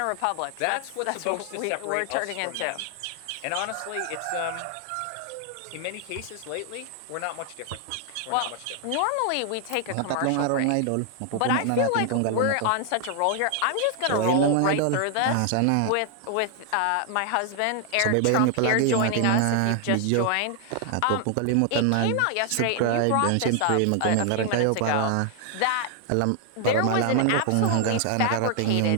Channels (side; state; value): both; different; correlation 0.00